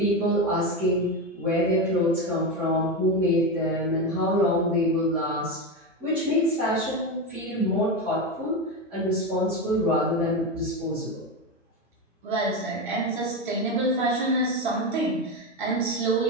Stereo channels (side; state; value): both; normal; correlation 0.15